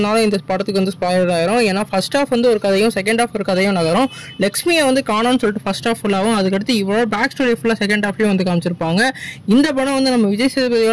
இந்த படத்துக்கு வந்து ஸ்பாயிலர் ஆயிரும். ஏன்னா ஃபர்ஸ்ட் ஹாஃப் வந்து ஒரு கதையும் செகண்ட் ஹாஃப் ஒரு கதையும் நகரும். லக்ஷ்மியை வந்து காணோம்னு சொல்லிட்டு ஃபர்ஸ்ட் ஹாஃப் ஃபுல்லாகவும், அதுக்கடுத்து இவ்வளோ பேக் ஸ்டோரி ஃபுல்லாக செகண்ட் ஹாஃப்லேயும் வந்து காமிச்சிருப்பாங்க. இந்த படம் வந்து நம்ம விஜய்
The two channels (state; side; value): identical; both; correlation 1.00